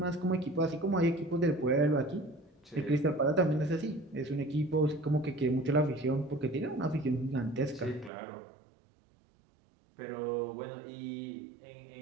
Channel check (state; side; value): drops out; left; at 8.1 s